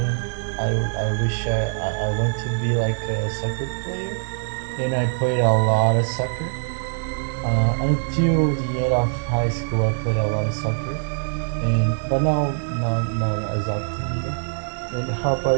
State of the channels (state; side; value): silent; left; 59 dB below the other